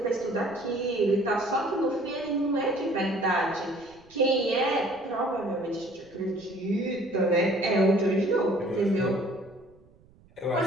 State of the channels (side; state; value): right; noise; rumble, 28 dB below the sound